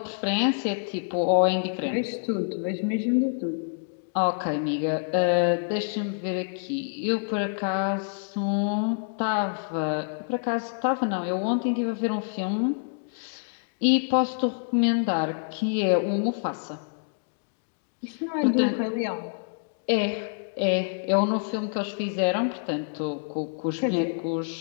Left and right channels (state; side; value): silent; right; digital silence